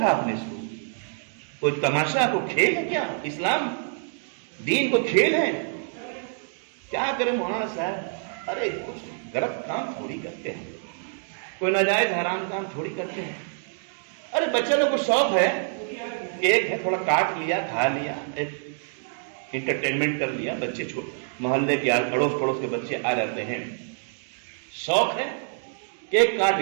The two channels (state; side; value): silent; left; 60 dB below the other